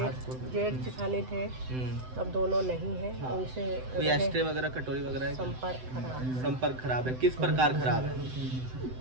जेठानी थे, अब दोनों नहीं है। हाँ। उनसे कोई एस्ट्रे वगैरह, कटोरी वगैरह है क्या? संपर्क खराब है। किस प्रकार खराब है?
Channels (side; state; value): left; late; 7.8 ms